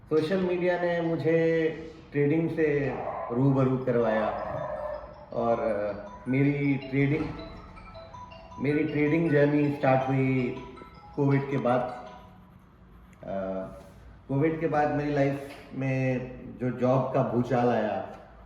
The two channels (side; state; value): both; identical; correlation 1.00